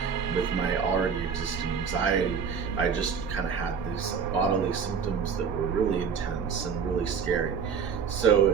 with my already existing anxiety, I just kind of had these bodily symptoms that were really intense and really scary. So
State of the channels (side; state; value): left; quieter; 6.4 dB